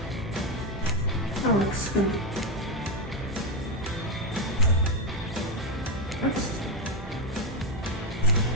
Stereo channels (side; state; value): both; normal; correlation 0.08